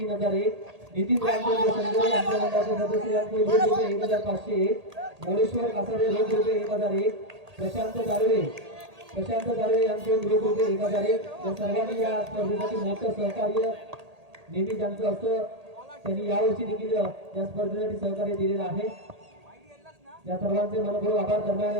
नितीन रामचंद्र संजय यांच्या मंडळाचे सदस्य यांच्याकडून रुपये 1500, मोरेश्वर कासारे रुपये 1001, प्रशांत दारवे यांच्याकडून रुपये 1001. या सर्वांनी या स्पर्धेसाठी मोठं सहकार्य नेहमी ज्यांचं असं त्यांनी यावर्षी देखील या स्पर्धेसाठी सहकार्य दिलेलं आहे. या सर्वांचे मनपूर्वक आभार. दरम्यान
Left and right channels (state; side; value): late; left; 1.8 ms